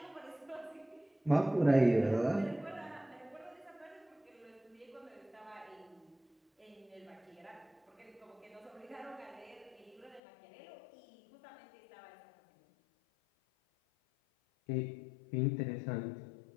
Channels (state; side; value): drops out; right; at 10.2 s